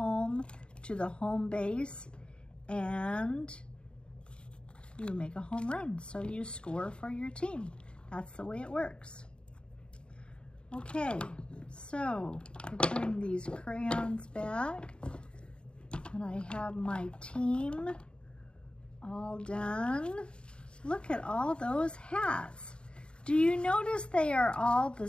to the home base and you make a home run. So you score for your team. That's the way it works. Okay, so we're putting these crayons back and I have my team all done. Look at all those hats. Do you notice they are all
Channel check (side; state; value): right; late; 0.053 ms